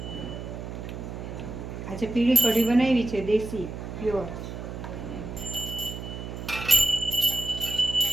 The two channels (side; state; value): right; noise; hum, 8 dB below the sound